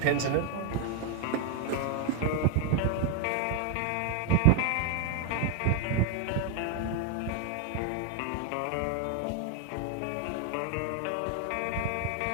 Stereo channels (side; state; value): both; different; correlation 0.01